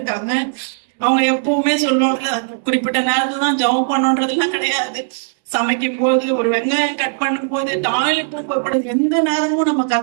அவங்க எப்பவுமே சொல்லுவாங்க, குறிப்பிட்ட நேரத்துல தான் ஜெபம் பண்ணணுன்றதுலாம் கிடையாது. சமைக்கும் போது, ஒரு வெங்காயம் கட் பண்ணும் போது, டாய்லெட் எந்த நேரமும் நம்ம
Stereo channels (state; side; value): silent; left; digital silence